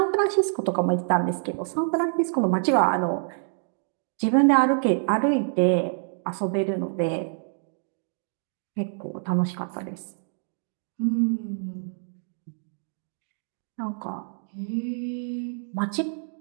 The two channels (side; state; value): left; silent; digital silence